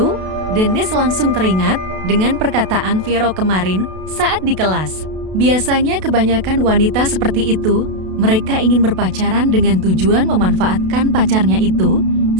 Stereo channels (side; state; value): left; late; 32 ms